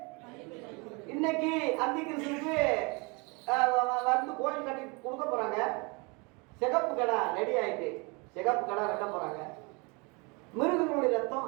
இன்னைக்கு அந்தி கிறிஸ்துவுக்கு வந்து கோயில் கட்டி கொடுக்க போறாங்க. சிகப்பு கடை ரெடி ஆயிட்டு, சிகப்பு கடை வெட்ட போறாங்க. மிருகங்களுடைய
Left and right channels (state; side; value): quieter; left; 29.3 dB